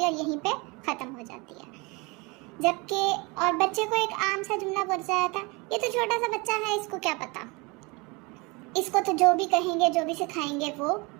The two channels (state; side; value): quieter; left; 27.0 dB